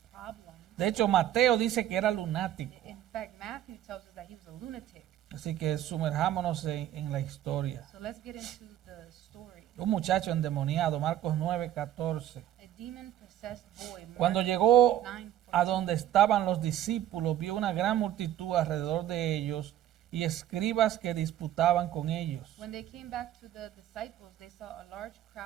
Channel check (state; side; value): quieter; left; 12.1 dB